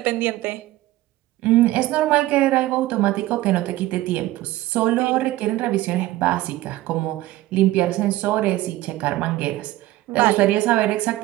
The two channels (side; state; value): left; quieter; 16.5 dB